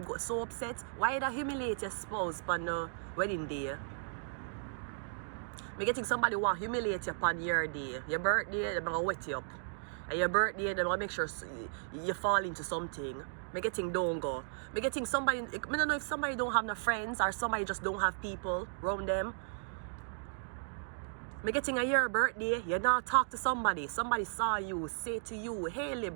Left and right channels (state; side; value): silent; left; digital silence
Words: go so upset? Why you humiliate your spouse on the wedding day? Me getting somebody want to humiliate you upon your day. Your birthday, they're going to wet you up. And your birthday, they're going to make sure you fall into something. Me getting don't go. Me getting somebody, I don't know if somebody don't have no friends or somebody just don't have people around them. Me getting a your birthday, you not talk to somebody. Somebody saw you, say to you, hey